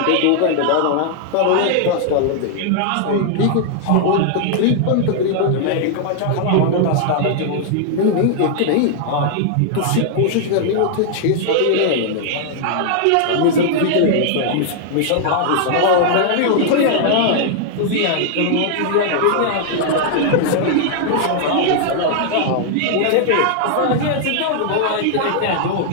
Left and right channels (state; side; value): different; both; correlation -0.01